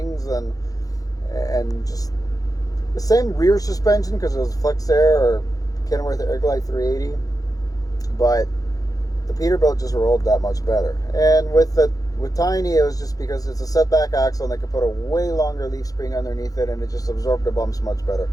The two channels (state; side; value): late; right; 0.17 ms